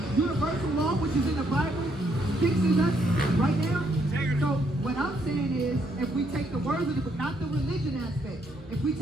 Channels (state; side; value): normal; both; correlation 0.72